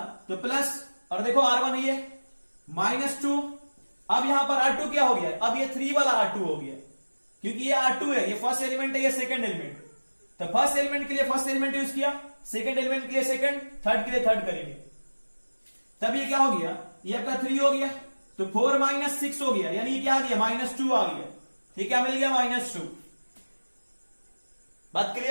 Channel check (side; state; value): both; inverted; correlation -1.00